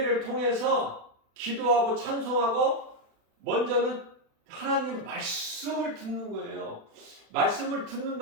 통해서 기도하고 찬송하고 먼저는 하나님 말씀을 듣는 거예요. 말씀을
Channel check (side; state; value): left; late; 36 ms